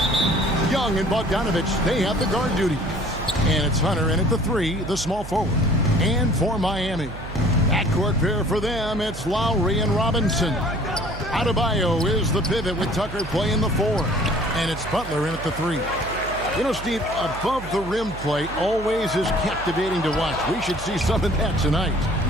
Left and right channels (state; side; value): noise; right; hum, 12 dB below the sound